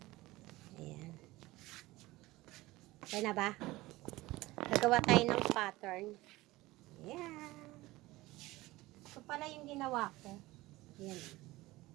Ayan. Kaya na ba? Gagawa tayo ng pattern. Ayan. Ito pala yung ginawa ko. Ayan.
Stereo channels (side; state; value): left; quieter; 19.2 dB